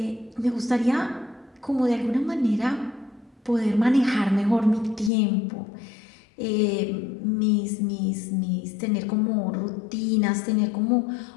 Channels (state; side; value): drops out; right; at 5.1 s